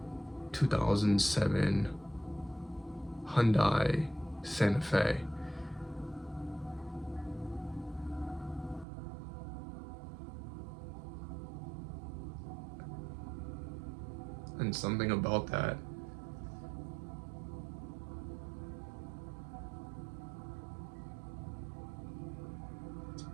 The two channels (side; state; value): left; drops out; at 8.8 s